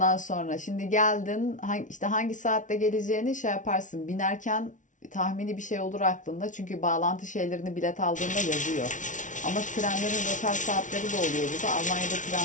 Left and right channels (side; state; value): right; late; 0.37 ms